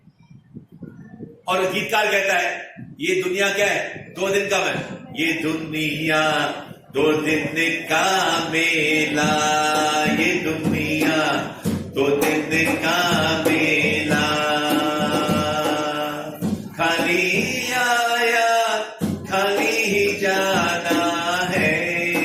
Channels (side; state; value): both; identical; correlation 1.00